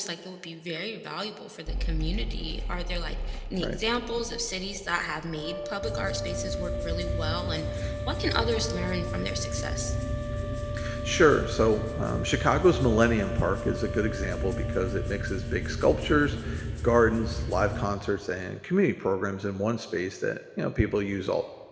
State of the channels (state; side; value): identical; both; correlation 1.00